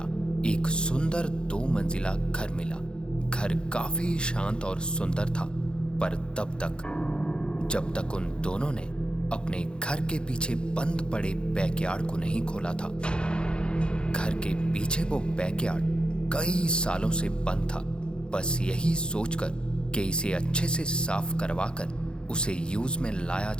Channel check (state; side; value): late; right; 0.051 ms